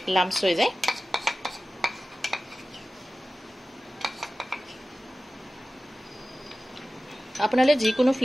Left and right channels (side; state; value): both; normal; correlation 0.95